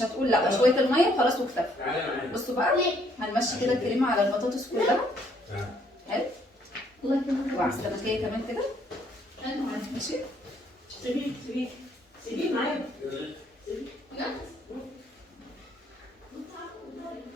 هتقول لا شويه الميه خلاص وكفايه. بصوا بقى هنمشي كده الكريمه على البطاطس كلها. حلو. وعلى السمكيه كمان كده. ماشي. سيبيه معايا.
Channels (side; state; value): both; normal; correlation 0.67